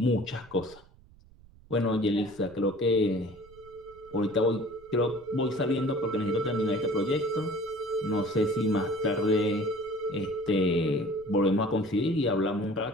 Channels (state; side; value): noise; right; rumble, 25 dB below the sound